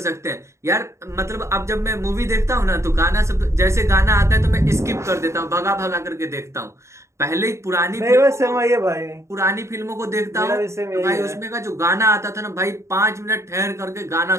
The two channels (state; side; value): late; left; 0.14 ms